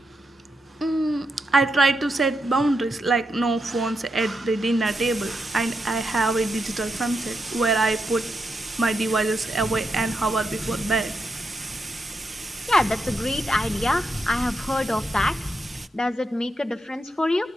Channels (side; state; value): both; normal; correlation 0.84